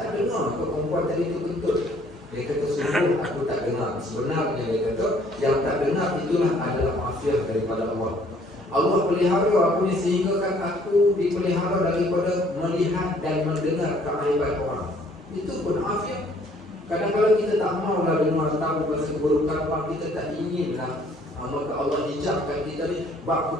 dengar ke perempuan tadi tu kentut? Dia kata sungguh aku tak dengar. Sebenarnya dia kata yang tak dengar itulah adalah afiat daripada Allah. Allah pelihara aku ni sehingga kan aku dipelihara daripada melihat dan mendengar keaiban orang. Itu pun afiat. Kadang-kadang kita tak maulah dengar tahu pasal keburukan orang, kita tak inginlah. Maka Allah hijabkan kita ni, bab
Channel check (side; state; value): both; normal; correlation 0.61